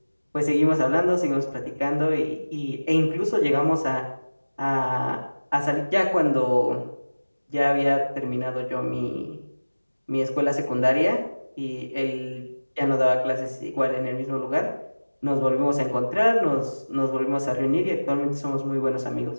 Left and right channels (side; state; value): both; inverted; correlation -1.00